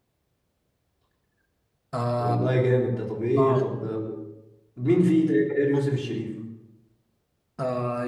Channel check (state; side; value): identical; both; correlation 1.00